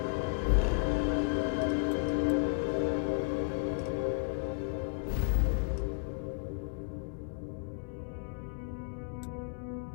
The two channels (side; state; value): right; quieter; 37.6 dB